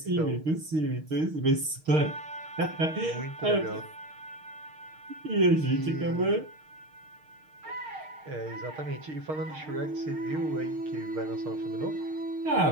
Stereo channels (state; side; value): late; left; 6.5 ms